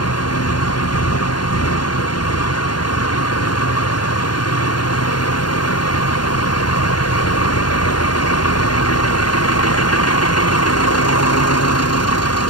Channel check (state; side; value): late; right; 0.71 ms